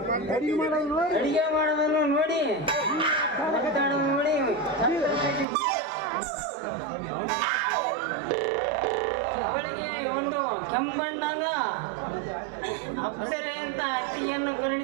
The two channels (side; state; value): left; drops out; at 5.5 s